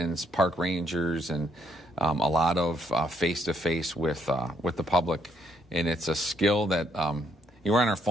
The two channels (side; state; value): both; normal; correlation 0.72